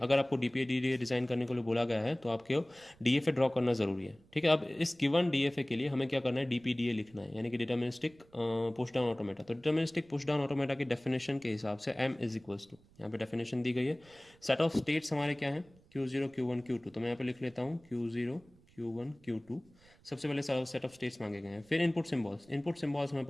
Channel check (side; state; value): right; noise; rumble, 28 dB below the sound